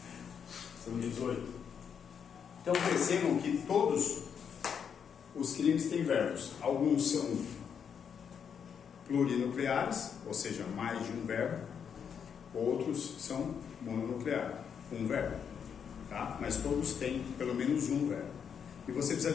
São 18. Então percebam que todos os crimes têm verbos. Alguns são plurinucleares, ou seja, mais de um verbo. Outros são mononucleares, um verbo. Tá? Mas todos têm pelo menos um verbo. E você precisa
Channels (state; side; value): quieter; right; 7.3 dB